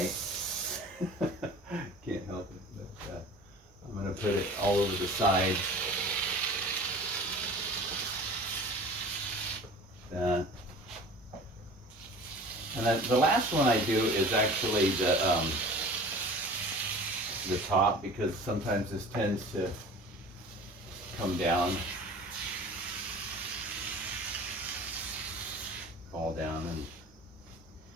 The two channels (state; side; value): noise; right; hum, 29 dB below the sound